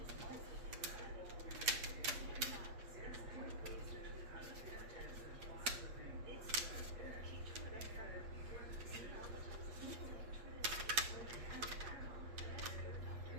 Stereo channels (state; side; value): late; left; 8.4 ms